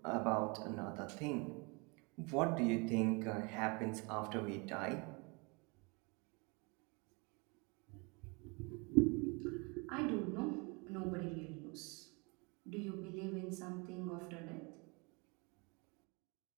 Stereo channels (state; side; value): quieter; left; 30.2 dB